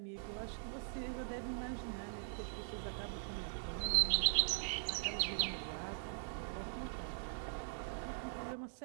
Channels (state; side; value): silent; left; digital silence